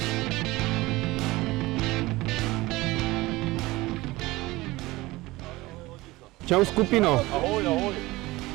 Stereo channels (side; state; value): left; quieter; 19.9 dB